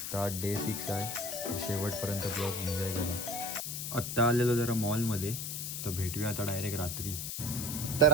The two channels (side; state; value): left; noise; hiss, 5 dB below the sound